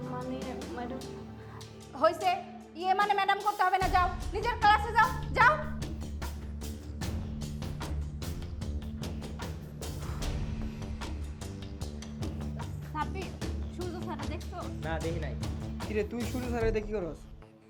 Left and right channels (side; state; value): both; identical; correlation 1.00